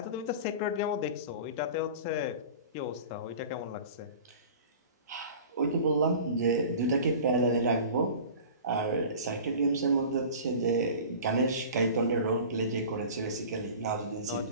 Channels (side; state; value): both; inverted; correlation -0.39